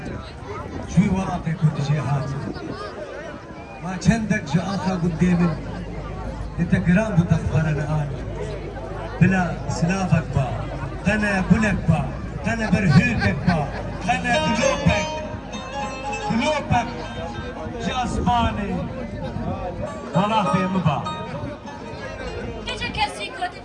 شوی وراقی کودی جی هاتی ما چندک جا آخا قدامن انت قرام بتخبرنا آني بلا سلافك با قنا بلك با قنا برهوكك با قنا قلوبك جاسماني والله في مبا Gece kesi kötü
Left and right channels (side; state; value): both; identical; correlation 1.00